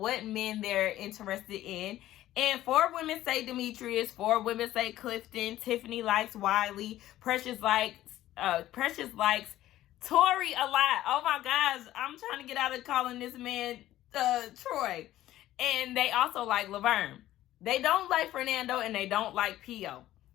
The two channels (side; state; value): right; quieter; 14.2 dB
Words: men they're interested in. And 4 women say Demetrius, 4 women say Clifton, Tiffany likes Wiley, Precious likes Tori a lot. Oh my gosh, I'm trying to get out of calling this man Troy. And they also like Laverne. They don't like Fernando, and they don't like Pio.